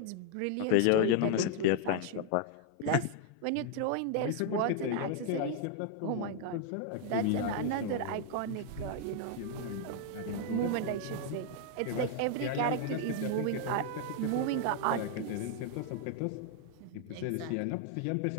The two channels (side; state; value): both; different; correlation 0.00